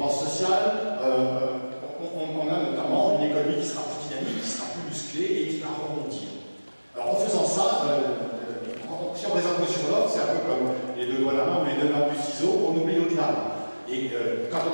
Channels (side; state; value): both; inverted; correlation -1.00